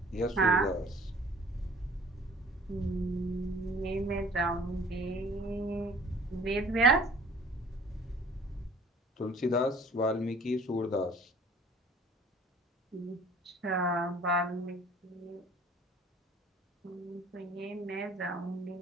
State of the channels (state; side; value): normal; both; correlation 0.51